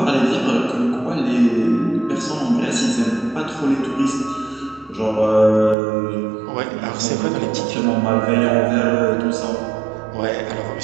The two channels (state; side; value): drops out; left; at 5.8 s